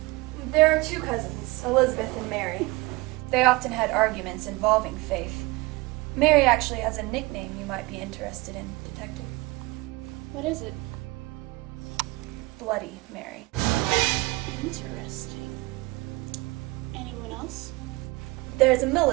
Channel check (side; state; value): left; quieter; 22.6 dB